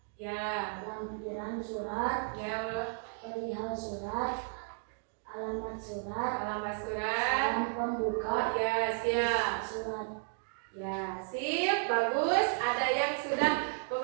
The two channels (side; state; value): left; silent; 55 dB below the other